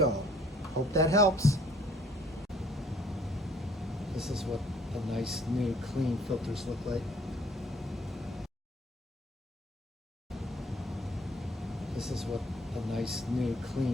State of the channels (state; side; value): normal; both; correlation 0.60